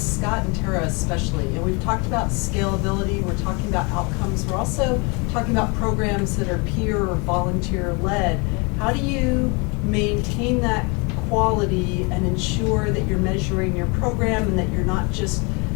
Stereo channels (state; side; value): quieter; right; 30.5 dB